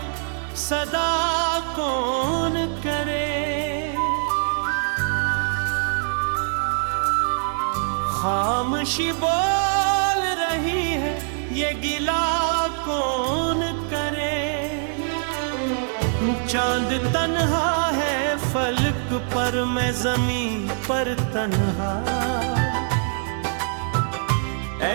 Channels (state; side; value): silent; left; 61 dB below the other